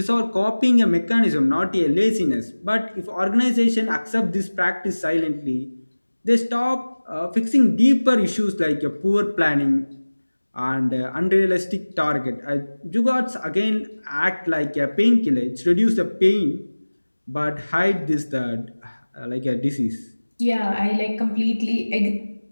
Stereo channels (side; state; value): both; inverted; correlation -1.00